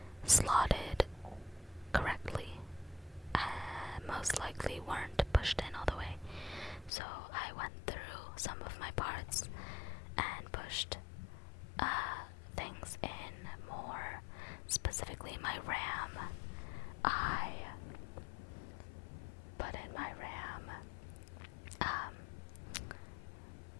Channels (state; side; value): drops out; right; at 6.9 s